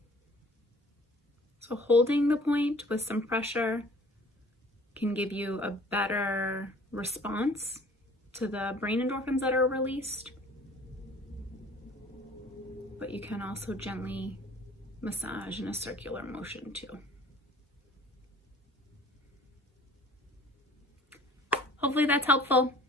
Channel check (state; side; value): normal; both; correlation 0.51